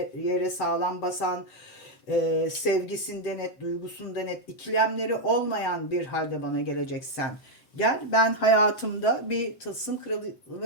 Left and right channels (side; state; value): right; late; 8.0 ms